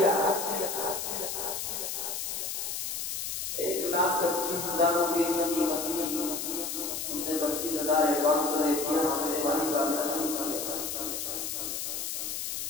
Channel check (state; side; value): noise; left; hiss, 3 dB below the sound